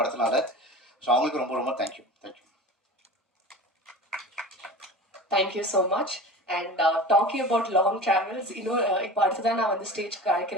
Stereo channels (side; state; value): both; normal; correlation 0.34